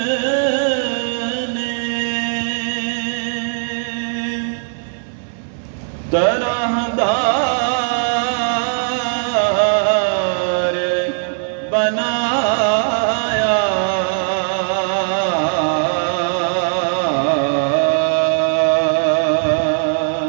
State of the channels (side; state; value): left; silent; digital silence